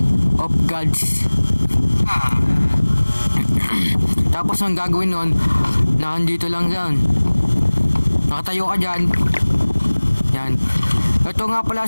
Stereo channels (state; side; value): inverted; both; correlation -1.00